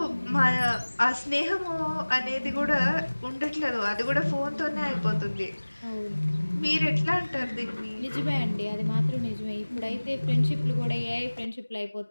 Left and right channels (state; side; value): inverted; both; correlation -1.00